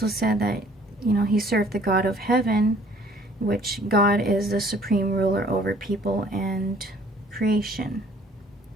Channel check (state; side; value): normal; both; correlation 0.57